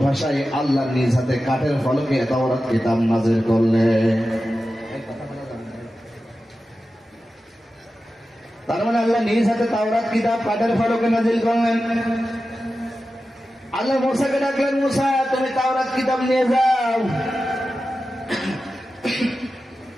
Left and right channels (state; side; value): normal; both; correlation 0.93